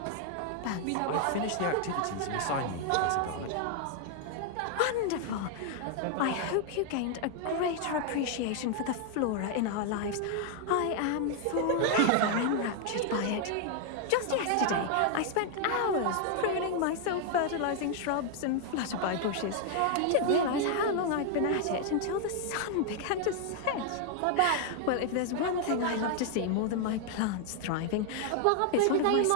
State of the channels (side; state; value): both; different; correlation 0.00